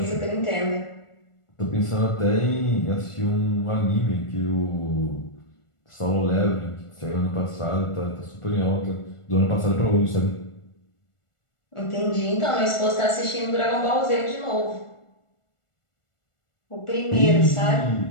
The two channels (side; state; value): right; late; 1.4 ms